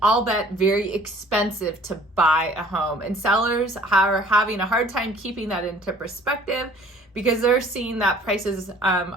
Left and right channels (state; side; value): normal; both; correlation 0.53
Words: albeit very expensive to buy a home. And sellers are having a hard time keeping that into perspective, because they're seeing that prices